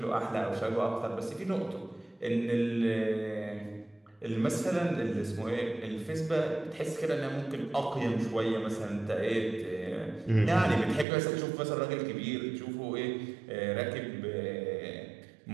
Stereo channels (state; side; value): drops out; left; at 11.1 s